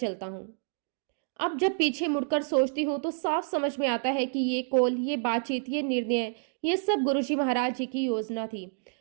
हूँ। अब जब पीछे मुड़कर सोचती हूँ तो साफ समझ में आता है कि ये कॉल, ये बातचीत, ये निर्णय, ये सब गुरुजी महाराज जी की योजना थी।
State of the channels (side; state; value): left; silent; 59 dB below the other